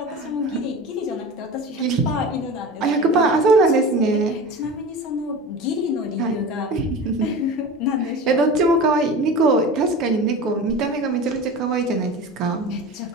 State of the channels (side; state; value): both; normal; correlation 0.32